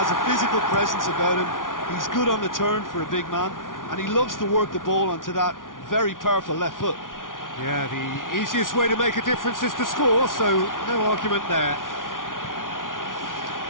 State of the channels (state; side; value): late; right; 0.89 ms